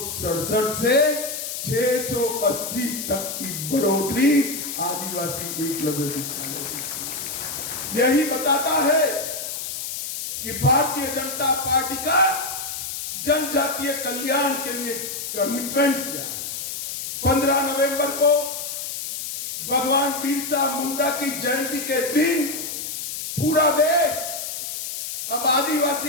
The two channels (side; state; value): left; noise; hiss, 6 dB below the sound